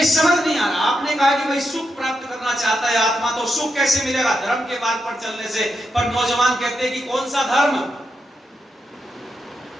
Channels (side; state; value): both; normal; correlation 0.85